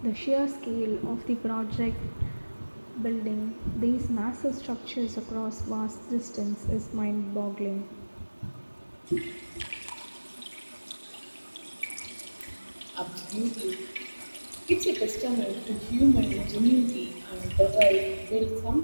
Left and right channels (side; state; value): both; inverted; correlation -1.00